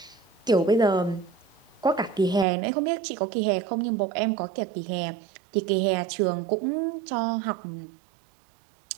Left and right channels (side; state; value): left; drops out; at 2.5 s